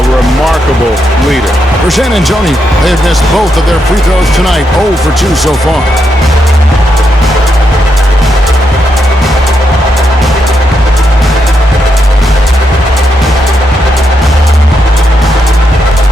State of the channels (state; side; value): normal; both; correlation 0.82